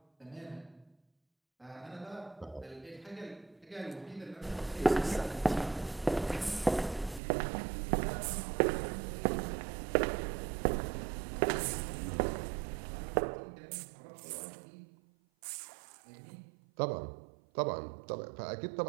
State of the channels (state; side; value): drops out; left; at 7.2 s